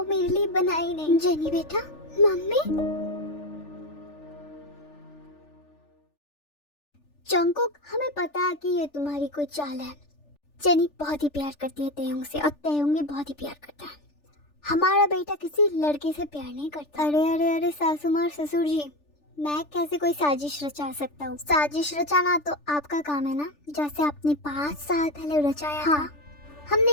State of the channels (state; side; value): late; right; 3.4 ms